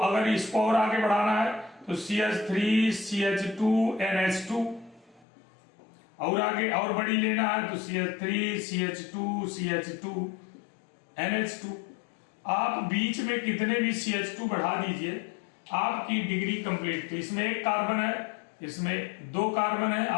इसको और आगे बढ़ाना है तो CH3CH2NH2, और आगे और बड़ी लेना है तो CH3CH2CH2NH2। आप बीच में कितने भी CH2 बढ़ा दीजिए, आपकी डिग्री कंप्लीट। तो इसमें 1 कार्बन है, इसमें 2 कार्बन है,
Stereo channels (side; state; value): right; drops out; at 5.2 s